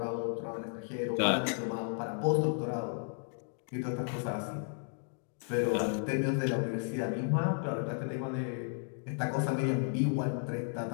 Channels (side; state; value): right; silent; 55 dB below the other